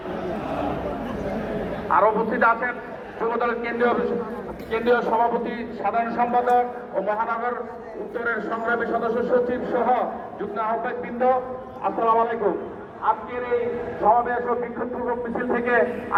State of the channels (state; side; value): identical; both; correlation 1.00